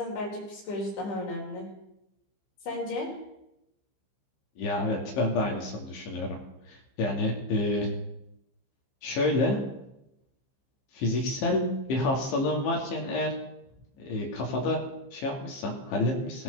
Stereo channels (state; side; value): late; right; 15 ms